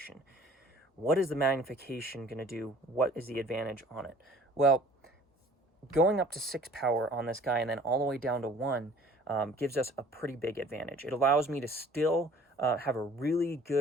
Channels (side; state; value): both; normal; correlation 0.51